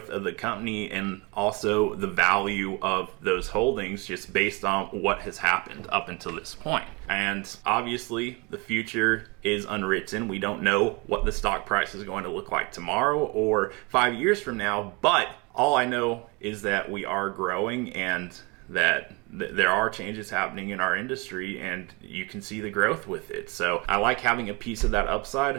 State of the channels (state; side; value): quieter; left; 28.4 dB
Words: of the company and also the value of those holdings just based on what has happened up until this point. And obviously the future is unwritten. We don't know what the stock price is going to look like tomorrow or 5 years from now, but all I know is that we are growing and that there are changes happening in our industry, and you can see the growth with it. So I like having a piece of that